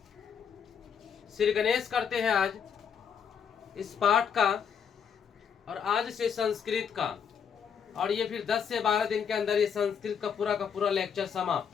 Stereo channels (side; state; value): right; quieter; 7.3 dB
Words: श्री गणेश करते हैं आज इस पाठ का, और आज से संस्कृत का। और ये फिर 10 से 12 दिन के अंदर ये संस्कृत का पूरा लेक्चर